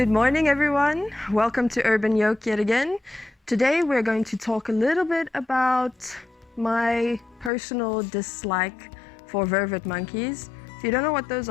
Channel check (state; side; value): drops out; right; at 7.5 s